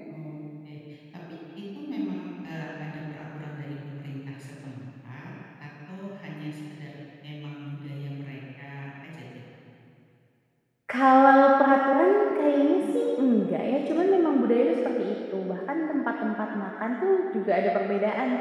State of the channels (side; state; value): both; identical; correlation 1.00